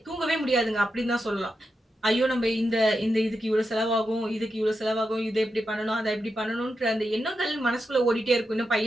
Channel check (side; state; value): both; normal; correlation 0.87